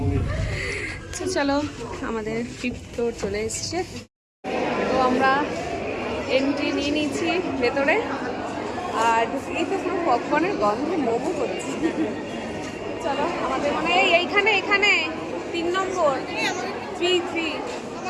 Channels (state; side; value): identical; both; correlation 1.00